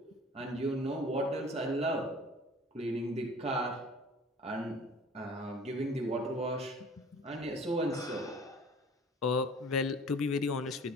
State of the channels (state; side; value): normal; both; correlation 0.46